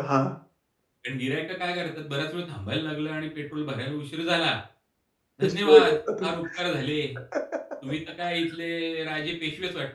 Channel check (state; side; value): identical; both; correlation 1.00